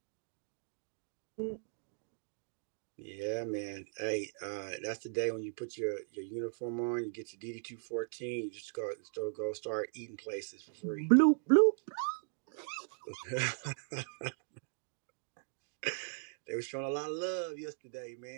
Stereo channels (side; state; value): left; silent; digital silence